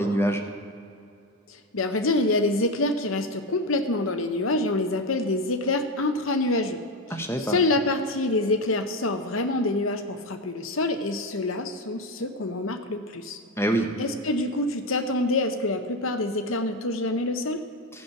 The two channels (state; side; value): normal; both; correlation 0.15